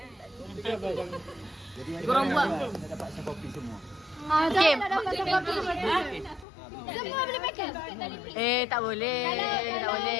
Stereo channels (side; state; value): right; drops out; at 6.5 s